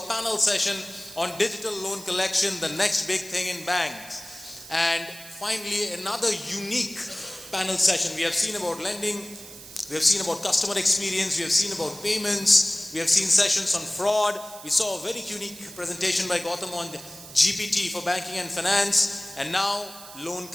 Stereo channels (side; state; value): right; noise; hiss, 16 dB below the sound